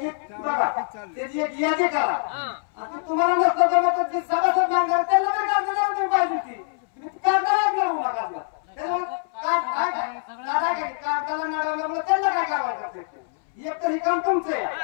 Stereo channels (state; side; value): silent; right; 62 dB below the other